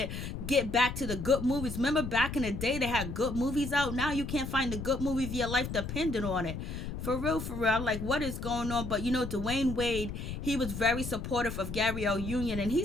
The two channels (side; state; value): left; noise; rumble, 6 dB below the sound